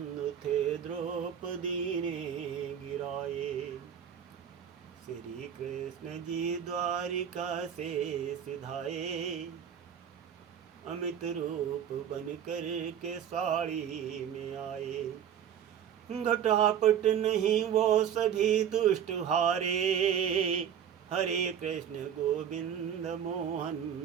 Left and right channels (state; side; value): quieter; left; 8.9 dB